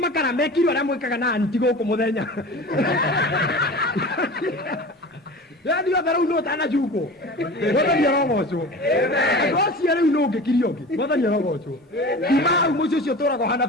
mekiro ara mwikaga na anti goko muthenya. Yani yo thara uno tana juko Mwathani arogocwo. Agocia riu no ngikiriogi Mwathani arogocwo. Ima umucio cio turago hana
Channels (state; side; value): normal; both; correlation 0.35